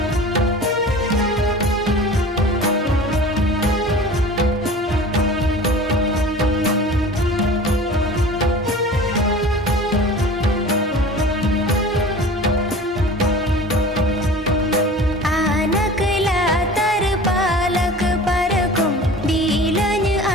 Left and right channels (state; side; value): normal; both; correlation 0.40